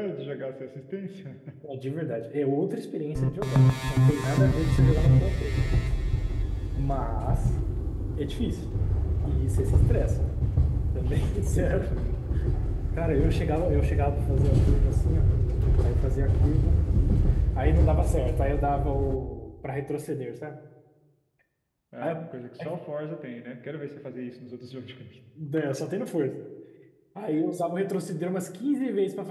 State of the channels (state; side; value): identical; both; correlation 1.00